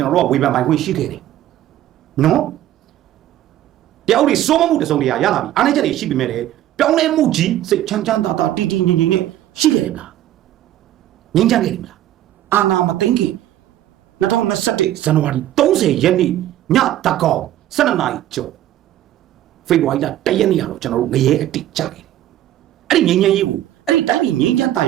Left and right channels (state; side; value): quieter; left; 12.9 dB